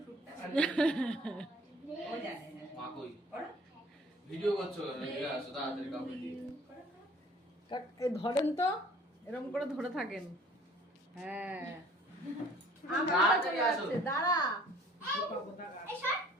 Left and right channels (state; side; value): normal; both; correlation 0.53